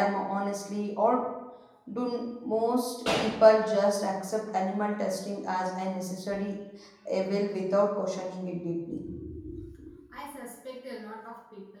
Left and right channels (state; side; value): identical; both; correlation 1.00